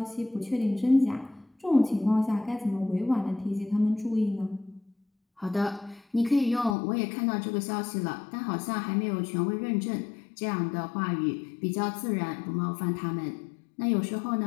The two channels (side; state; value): right; drops out; at 6.8 s